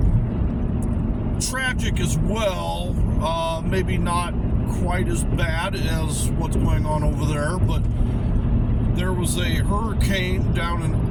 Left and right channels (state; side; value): identical; both; correlation 1.00